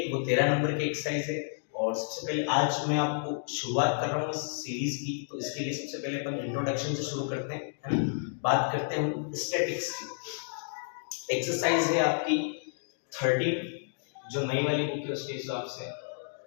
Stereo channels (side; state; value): right; silent; digital silence